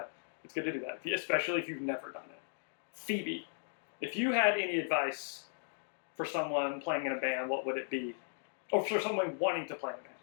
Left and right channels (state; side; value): silent; right; digital silence